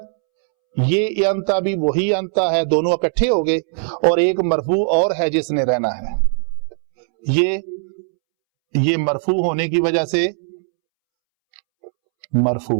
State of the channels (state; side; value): silent; left; 67 dB below the other